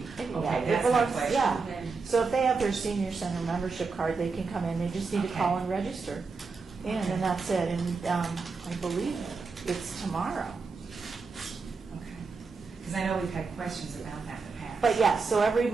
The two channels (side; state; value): left; quieter; 4.6 dB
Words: Okay, it that's my belongs- question. yeah. Okay. So if they have their senior center membership card, they can come in. They just need to call Okay. and register. And that's it. And I believe it's tomorrow. Okay. Because I know we've had questions about that in the past. But yeah, so every